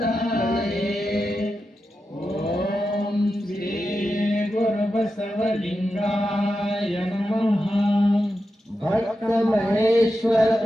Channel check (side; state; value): both; normal; correlation 0.89